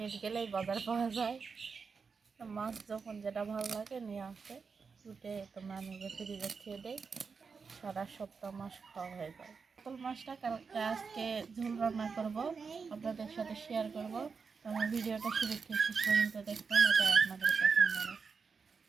গেলেই বাজার পাওয়া যায়। তো মাছ যখন যেটা ভালো লাগে নিয়ে আসে, উঠে তো আমি ফ্রিজে খেয়ে দেই, সারা সপ্তাহ মাছ খাওয়া হয়ে যায়। কাতল মাছটা কালকে আজকে ঝোল রান্না করব, আপনাদের সাথে শেয়ার করব। তো আমার ভিডিওটা শুরু থেকে শেষ পর্যন্ত দেখবেন, এটা আপনাদের পছন্দ হবে।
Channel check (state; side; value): quieter; left; 5.3 dB